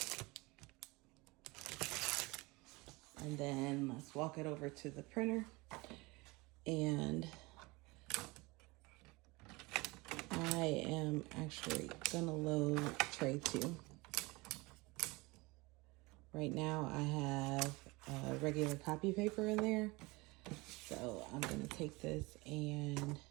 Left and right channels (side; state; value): left; quieter; 24.0 dB